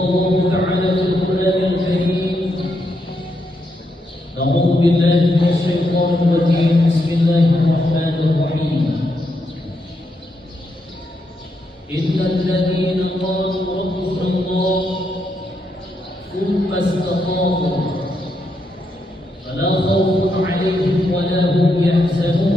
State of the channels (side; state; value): both; normal; correlation 0.81